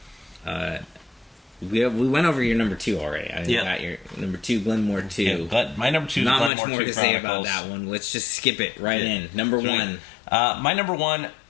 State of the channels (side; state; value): right; drops out; at 6.5 s